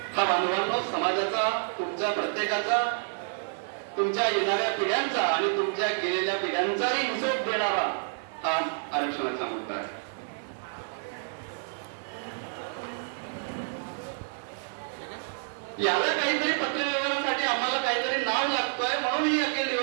हा बांधवांनो समाजाचा, तुमच्या प्रत्येकाचा, तुमच्या येणाऱ्या पिढ्यांचा आणि तुमच्या गेलेल्या पिढ्यांचाही हिशोब देणारा हा आरक्षणाचा मुद्दा आहे. याला काहीतरी पत्रव्यवहारासाठी आम्हाला काहीतरी नाव लागतोय म्हणून ही अखिल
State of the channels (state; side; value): silent; left; 59 dB below the other